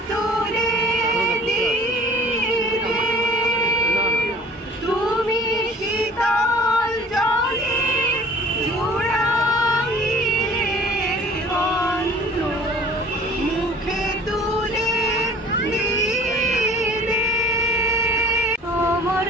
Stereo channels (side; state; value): both; normal; correlation 0.49